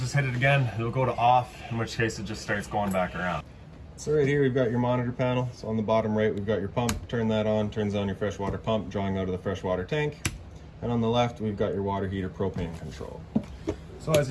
hit it again. It'll go to off, in which case it just starts going back around. So right here we've got your monitor panel. So on the bottom right we've got your pump. Turn that on, turns on your freshwater pump, drawing out of the freshwater tank. And on the left we've got your water heater propane control. So as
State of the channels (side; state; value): both; identical; correlation 1.00